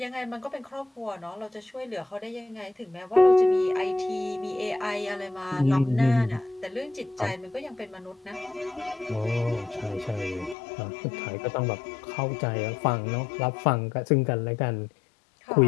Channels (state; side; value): drops out; right; at 10.6 s